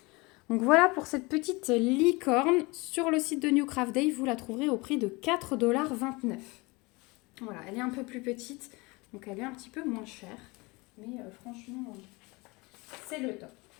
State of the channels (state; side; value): quieter; right; 25.1 dB